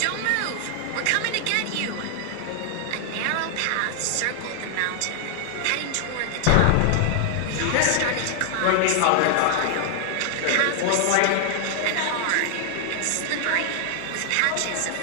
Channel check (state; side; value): different; both; correlation -0.01